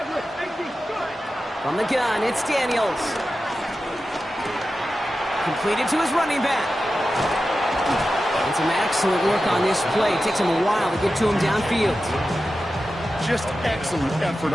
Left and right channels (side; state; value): both; normal; correlation 0.92